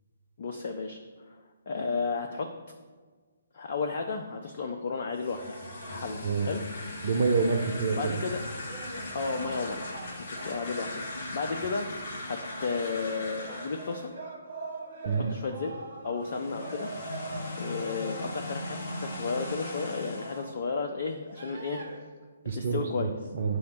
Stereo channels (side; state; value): both; inverted; correlation -0.66